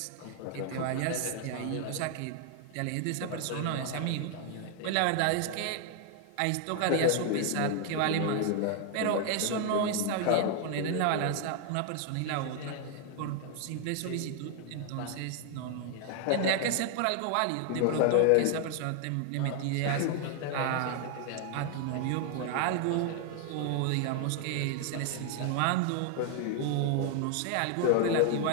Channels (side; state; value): both; different; correlation 0.00